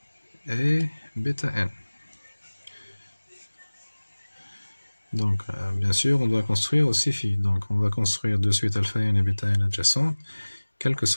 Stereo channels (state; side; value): inverted; both; correlation -1.00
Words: et bêta n. Donc, bien sûr, on doit construire aussi phi. Donc, on va construire de suite alpha n et bêta n adjacentes, quel que